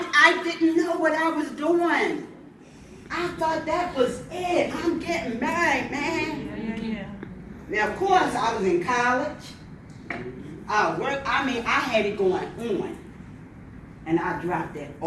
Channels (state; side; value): identical; both; correlation 1.00